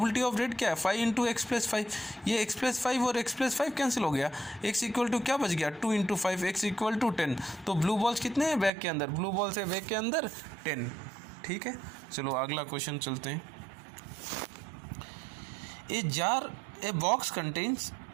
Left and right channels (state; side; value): drops out; left; at 8.7 s